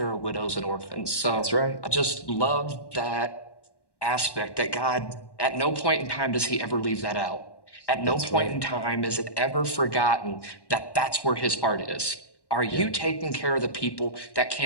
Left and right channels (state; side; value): late; right; 1.1 ms